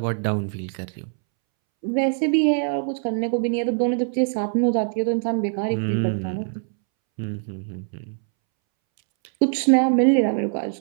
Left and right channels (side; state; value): left; silent; 63 dB below the other